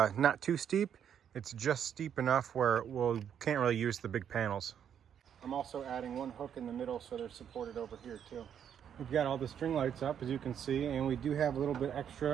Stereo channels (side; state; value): left; quieter; 8.7 dB